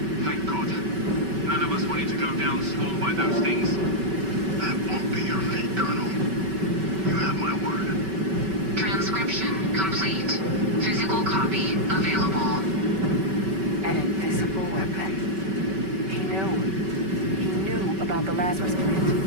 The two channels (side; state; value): left; late; 5.2 ms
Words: Thank God. None of us wanted to go down swarmed by those things. That won't be your fate, Colonel. You have my word. Transcription complete. Physical copy available. An invisible weapon. He knew about the Lazarus